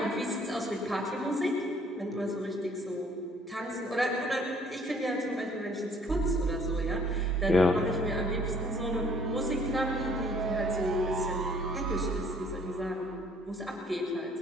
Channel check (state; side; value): normal; both; correlation 0.60